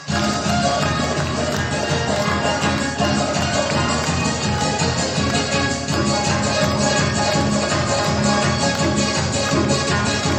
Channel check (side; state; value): both; identical; correlation 1.00